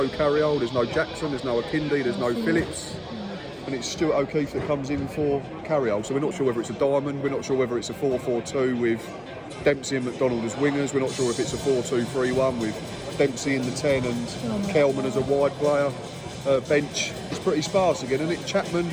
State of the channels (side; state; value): both; identical; correlation 1.00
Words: Carriol, there's no Jackson, there's no Akindi, there's no Phillips. And it's Stuart O'Keefe that comes in for Carriol. So we're not sure whether it's a diamond, we're not sure whether it's a 4-4-2 with Dempsey and McDonald as wingers, we're not sure if it's a 4-2-3-1 with Dempsey in the 10 and Kelman as a wide player. Bench is pretty sparse again, isn't it? Chapman,